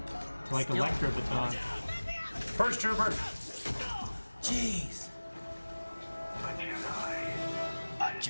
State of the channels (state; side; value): inverted; both; correlation -1.00